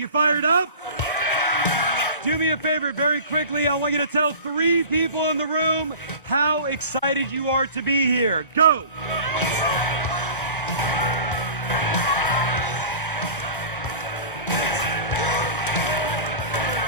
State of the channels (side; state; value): both; inverted; correlation -0.38